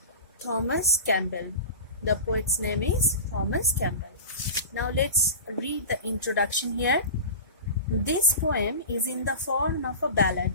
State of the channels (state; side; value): inverted; both; correlation -0.31